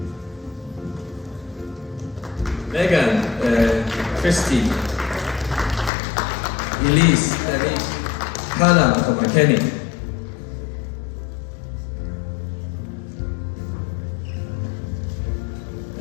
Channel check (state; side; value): drops out; right; at 5.9 s